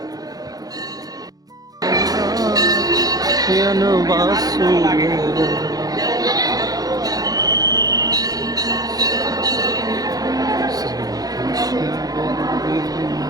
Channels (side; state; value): left; late; 0.18 ms